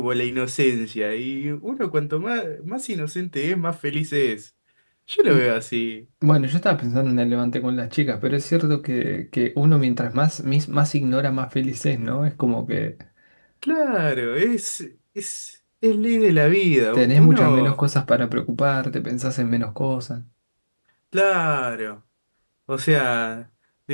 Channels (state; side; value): inverted; both; correlation -1.00